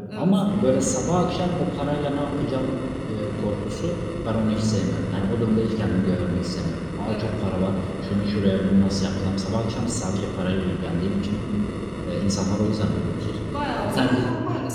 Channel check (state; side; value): identical; both; correlation 1.00